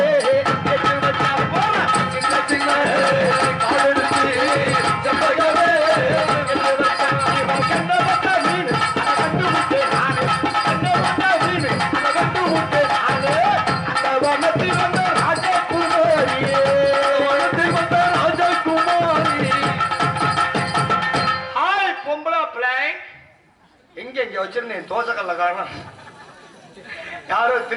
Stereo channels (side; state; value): both; identical; correlation 1.00